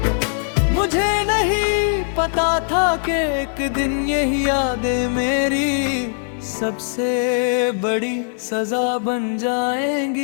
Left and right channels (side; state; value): right; silent; digital silence